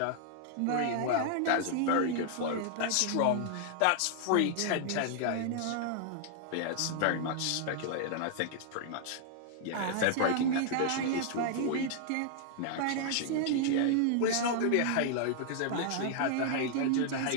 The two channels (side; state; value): both; different; correlation -0.01